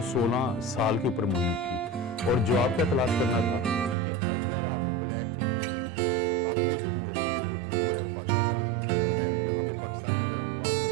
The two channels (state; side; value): drops out; left; at 4.0 s